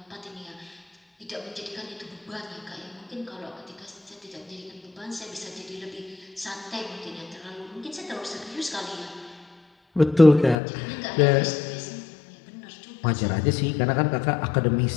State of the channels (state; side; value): drops out; right; at 10.6 s